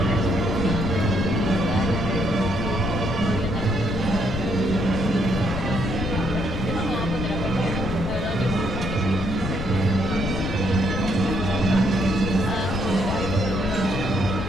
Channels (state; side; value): noise; left; rumble, 6 dB below the sound